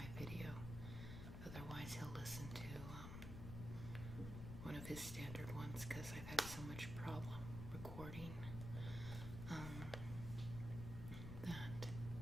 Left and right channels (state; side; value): noise; left; rumble, 6 dB below the sound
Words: video, otherwise he'll listen to one of his standard ones, because I've had so much problem recording that